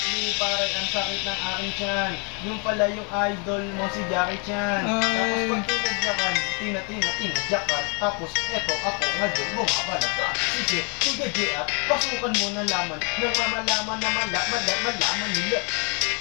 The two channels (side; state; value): right; quieter; 35.6 dB